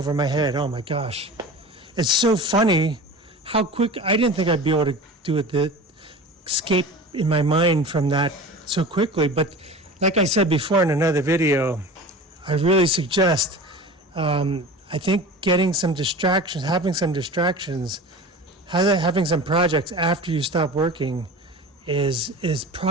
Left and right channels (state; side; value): normal; both; correlation 0.35